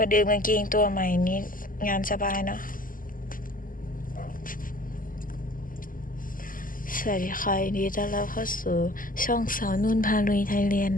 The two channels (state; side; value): late; right; 0.40 ms